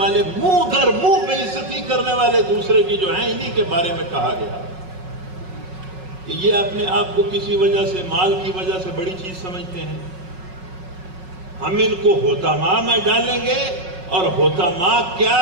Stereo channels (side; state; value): left; late; 5.4 ms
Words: منہ در منہ بےعزتی کرنے والے دوسرے کی جو ہیں، انہی کے بارے میں کہا گیا کہ یہ اپنے آپ کو کسی وجہ سے، مال کی وجہ سے بڑی چیز سمجھتے ہیں۔ ہم ان کو حطماء میں ڈالیں گے، اور حطماء کیا